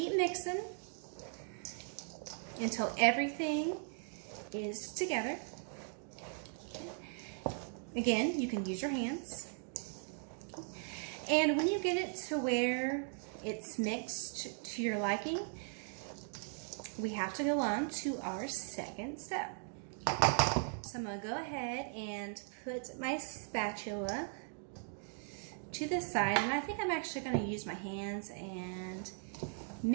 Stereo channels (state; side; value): silent; left; 52 dB below the other